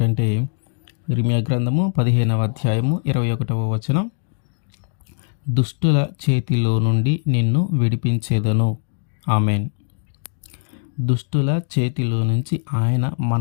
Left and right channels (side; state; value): right; silent; 65 dB below the other